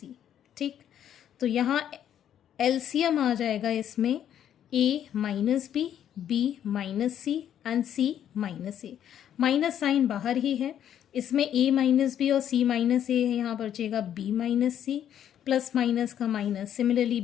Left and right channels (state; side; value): quieter; right; 10.0 dB